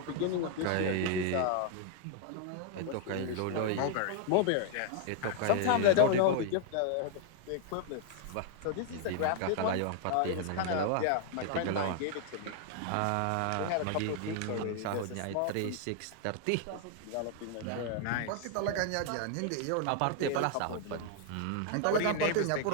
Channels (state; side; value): different; both; correlation 0.00